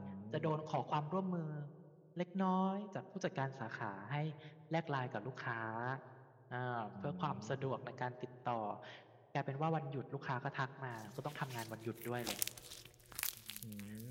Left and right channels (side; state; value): both; identical; correlation 1.00